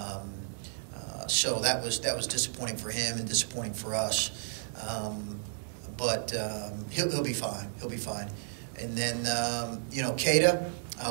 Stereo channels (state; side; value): silent; left; digital silence